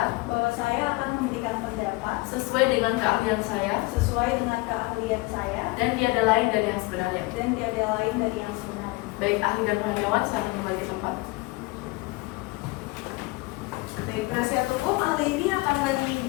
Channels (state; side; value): quieter; right; 23.1 dB